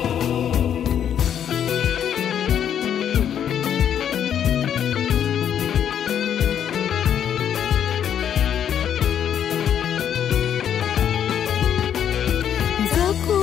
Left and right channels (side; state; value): right; quieter; 9.3 dB